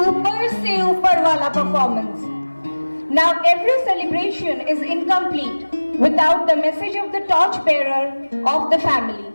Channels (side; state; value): both; inverted; correlation -1.00